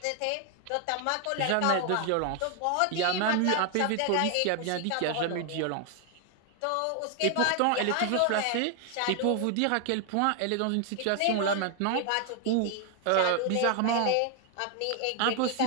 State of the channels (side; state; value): both; different; correlation 0.00